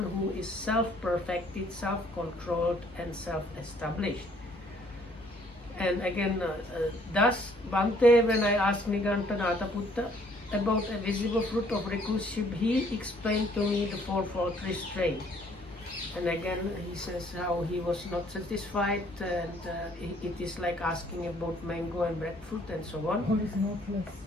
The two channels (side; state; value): both; normal; correlation 0.62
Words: who is self-perfected, self-controlled and self-established. And again, thus Bante, when I asked Niganta Nataputta about a visible fruit of recluseship, he explained to me the fourfold restraint. And again, he says how he was not satisfied, and it is like asking about mango and breadfruit and so on. What is knotless?